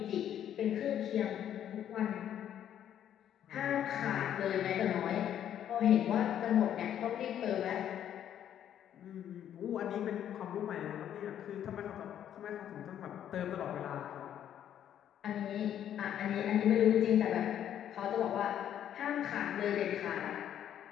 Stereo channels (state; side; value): quieter; right; 10.3 dB